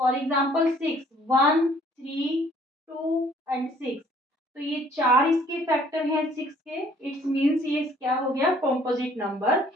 एग्जांपल 6, 1 3 2 एंड 6, तो ये चार इसके फैक्टर हैं 6 के, इट्स मीन्स ये क्या हो गया? Composite number.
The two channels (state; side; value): normal; both; correlation 0.59